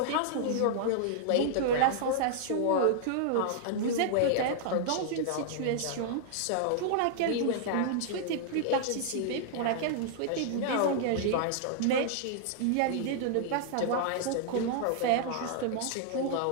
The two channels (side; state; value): both; different; correlation -0.01